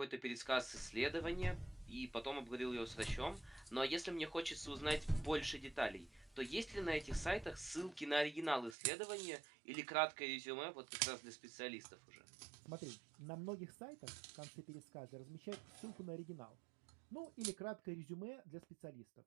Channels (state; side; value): drops out; left; at 8.8 s